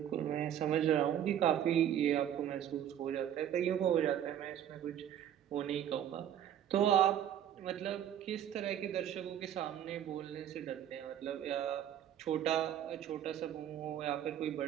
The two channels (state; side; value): quieter; left; 10.3 dB